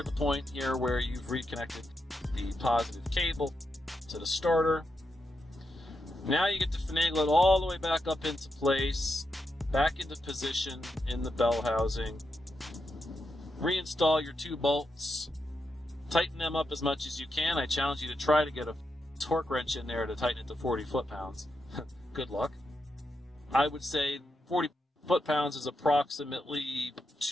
the point here where you've reconnected the positive cable to the starter. Now you get to finagle it all the way back up into place, back into position in the bell housing. Reinstall your two bolts, tighten them up as much as you can. I challenge you to try to get a torque wrench in there to tighten it to 40 foot-pounds. Good luck. I would say 40 foot-pounds is approximately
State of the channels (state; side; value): normal; both; correlation 0.85